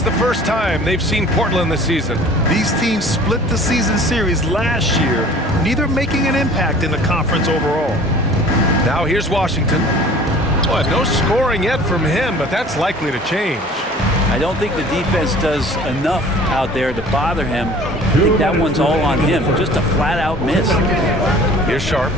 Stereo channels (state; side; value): normal; both; correlation 0.47